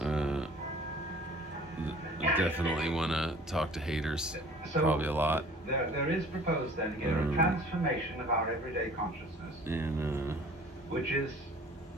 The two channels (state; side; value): normal; both; correlation 0.49